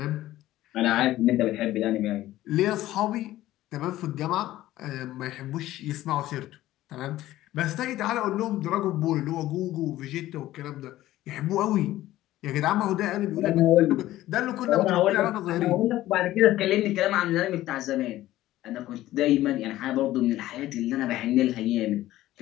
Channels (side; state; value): right; quieter; 15.1 dB